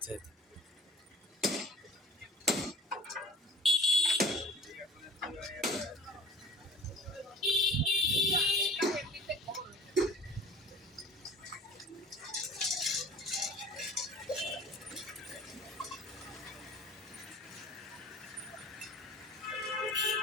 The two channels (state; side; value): normal; both; correlation 0.45